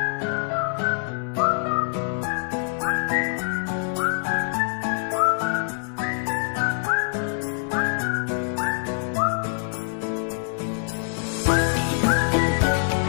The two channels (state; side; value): silent; right; 62 dB below the other